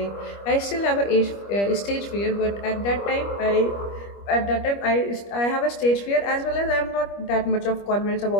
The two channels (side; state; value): right; late; 25 ms